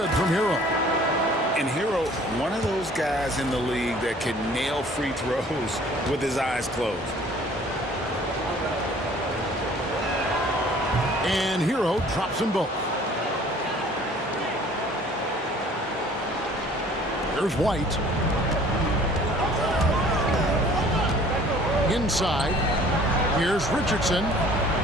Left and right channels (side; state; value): both; normal; correlation 0.52